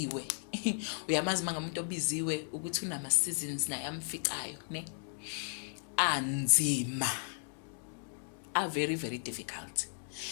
uyamazi manga umuntu obiziwe ukuthi unama seasons naye amficayo ne anzima are very very difficult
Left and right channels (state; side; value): silent; right; digital silence